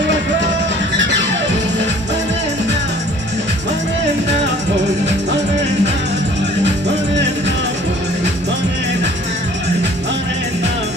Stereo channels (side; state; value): both; normal; correlation 0.52